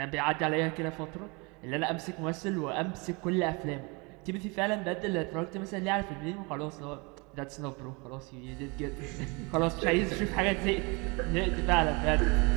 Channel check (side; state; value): left; quieter; 29.3 dB